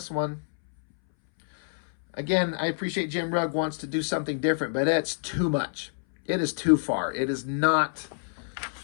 one. Again, I appreciate Jim Rugg wants to do something different, but it's too much. It is too far. It is not...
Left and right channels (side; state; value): right; silent; 60 dB below the other